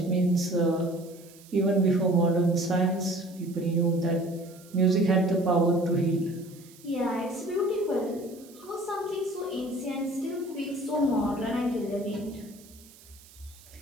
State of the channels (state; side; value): noise; right; hiss, 23 dB below the sound